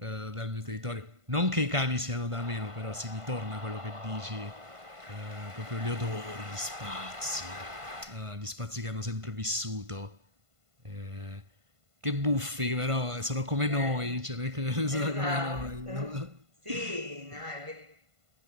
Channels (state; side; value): late; left; 1.5 ms